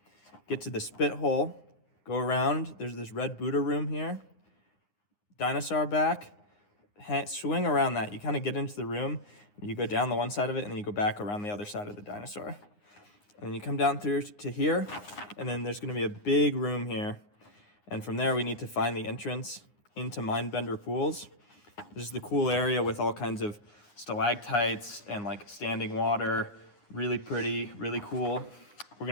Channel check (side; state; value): right; late; 9.6 ms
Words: get to the spit hole, go around. There's this red Buddha room here. Dinosaur back. Swing around that. You kind of get into the room, you go down the one side of it, and then you go back around the other side of the dinosaur. And then you come down through to here, and then there's going to be a big room here. And from there, we need to find the entrance into Mindbender Pools. This is the cool area with all kinds of stalactites and like standing water. Really pretty, really cool. We're